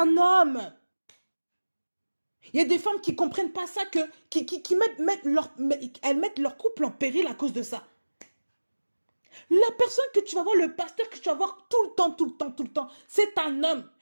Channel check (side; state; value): both; inverted; correlation -1.00